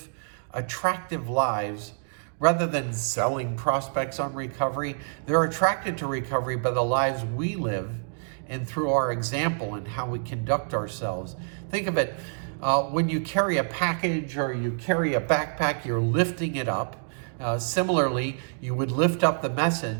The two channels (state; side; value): silent; left; digital silence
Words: attractive lives rather than selling prospects on recovery. They're attracted to recovery by the lives we live and through our example and how we conduct ourselves. Think of it, when you carry a package or you carry a backpack, you're lifting it up. Similarly, you would lift up the